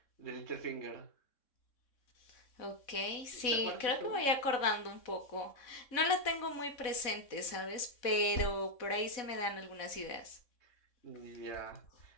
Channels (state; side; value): late; right; 3.6 ms